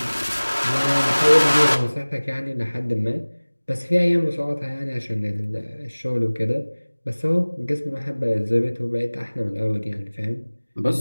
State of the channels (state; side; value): inverted; both; correlation -1.00